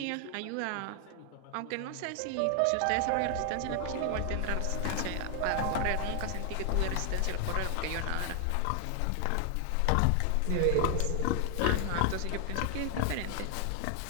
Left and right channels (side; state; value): both; different; correlation 0.00